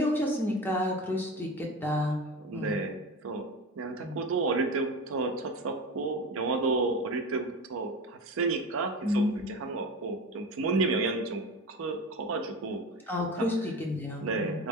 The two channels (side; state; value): both; normal; correlation 0.28